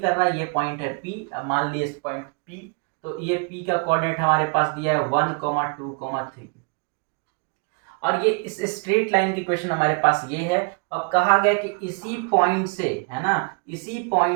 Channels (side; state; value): left; quieter; 35.0 dB